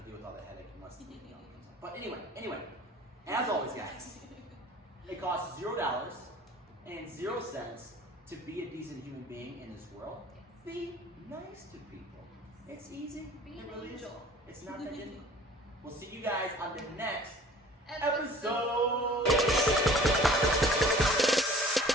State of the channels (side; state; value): both; normal; correlation 0.48